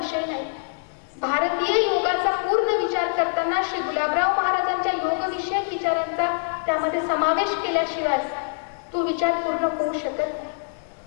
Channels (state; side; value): silent; right; 60 dB below the other